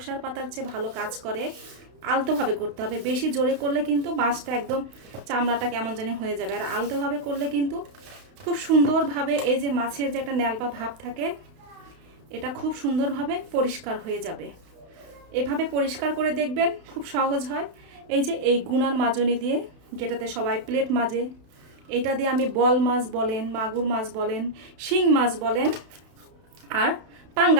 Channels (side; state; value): left; late; 31 ms